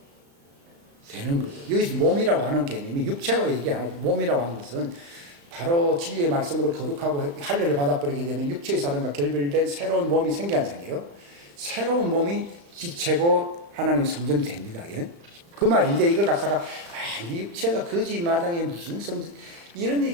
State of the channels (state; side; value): late; left; 35 ms